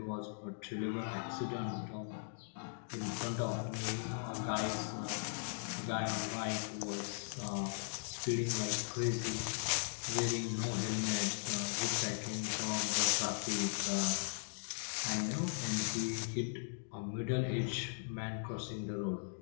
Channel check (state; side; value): silent; right; digital silence